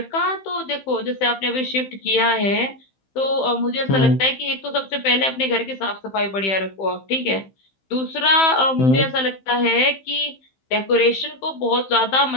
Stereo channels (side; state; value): right; late; 15 ms